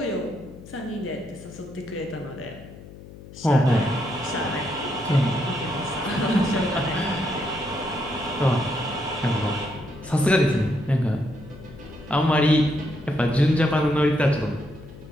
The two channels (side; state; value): left; noise; hum, 17 dB below the sound